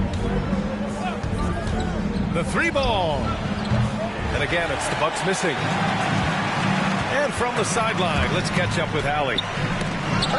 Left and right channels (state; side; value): identical; both; correlation 1.00